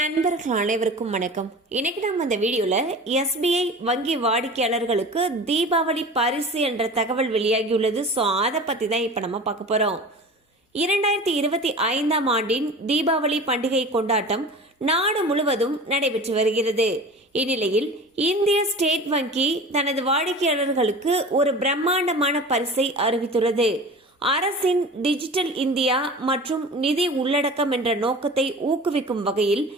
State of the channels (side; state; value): both; normal; correlation 0.37